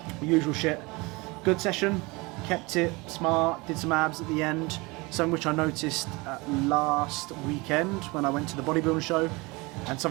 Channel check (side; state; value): left; quieter; 24.9 dB